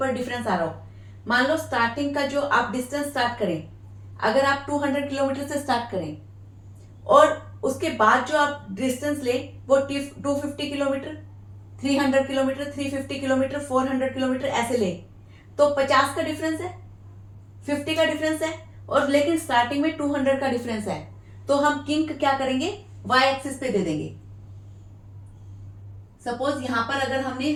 डिफरेंस आ रहा हो। मान लो स्टार्टिंग का जो आप डिस्टेंस स्टार्ट करें, अगर आप 200 किलोमीटर से स्टार्ट करें और उसके बाद जो आप डिस्टेंस ले वो 250 किलोमीटर, 300 किलोमीटर, 350 किलोमीटर, 400 किलोमीटर ऐसे ले, तो 50 का डिफरेंस है, 50 का डिफरेंस है, और लेकिन स्टार्टिंग में 200 का डिफरेंस है। तो हम किंक क्या करेंगे, y एक्सिस पे दे देंगे। सपोज यहां पर अगर हमने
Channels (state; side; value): identical; both; correlation 1.00